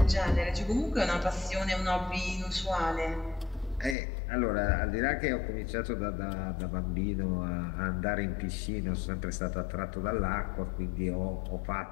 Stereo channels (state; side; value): drops out; right; at 4.0 s